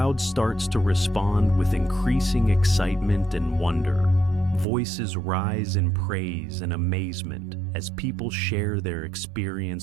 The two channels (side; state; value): left; drops out; at 4.7 s